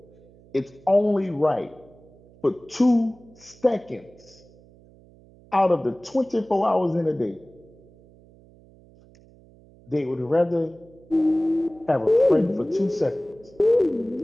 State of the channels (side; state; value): right; noise; hum, 26 dB below the sound